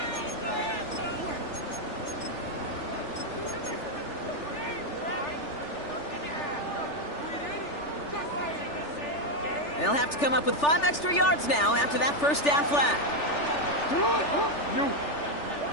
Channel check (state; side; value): late; right; 3.4 ms